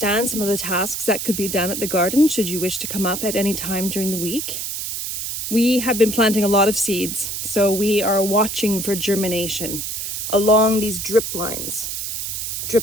some of the tasks that could be done at the garden should you wish to come up at any time during the week. We have been planting a lot of seeds, so we are watching for germination along these drip lines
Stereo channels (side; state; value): right; noise; hiss, 4 dB below the sound